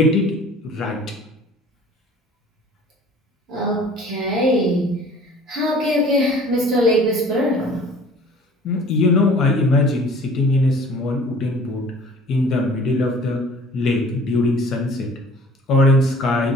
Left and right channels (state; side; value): normal; both; correlation 0.49